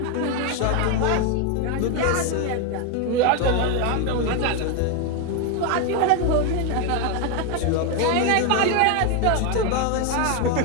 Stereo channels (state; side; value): different; both; correlation 0.01